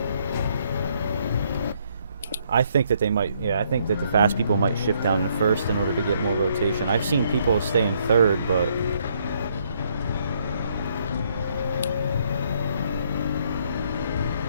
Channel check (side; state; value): both; inverted; correlation -0.70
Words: I think that they might, yeah, I think that the fast people might shift down to first in order to get more rotation. I've seen people stay in third, but